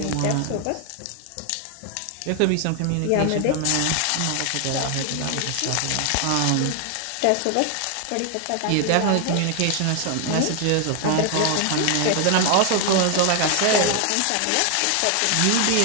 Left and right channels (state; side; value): different; both; correlation 0.00